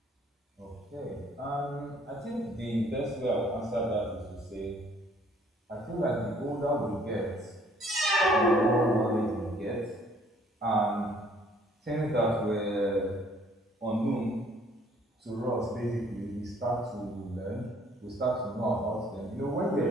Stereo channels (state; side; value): normal; both; correlation 0.60